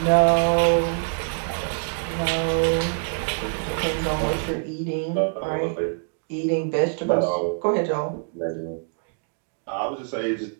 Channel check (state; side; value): silent; left; digital silence